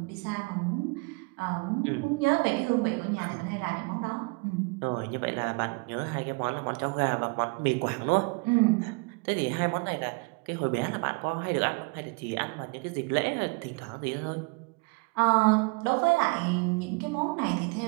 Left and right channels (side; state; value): left; quieter; 30.7 dB